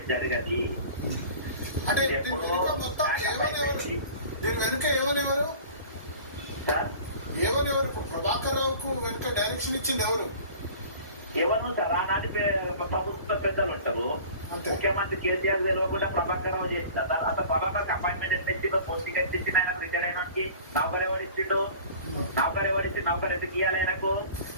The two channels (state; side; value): inverted; both; correlation -0.43